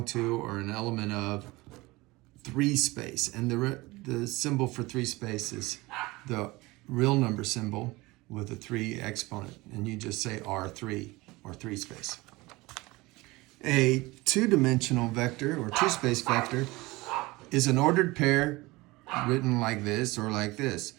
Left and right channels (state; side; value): quieter; left; 21.6 dB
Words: to or an element of three space. And the symbol for three space is the real number symbol with a 3 exponent. And you just say R3 or three space. A two-dimensional vector or two-space vector is an ordered pair written like this or like this.